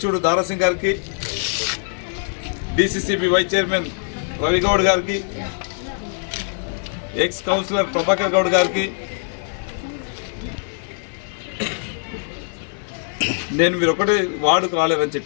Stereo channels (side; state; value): right; silent; 64 dB below the other